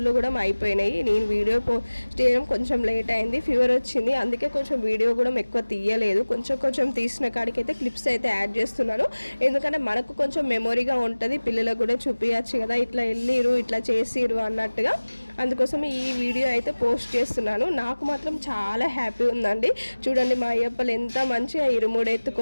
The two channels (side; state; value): both; inverted; correlation -1.00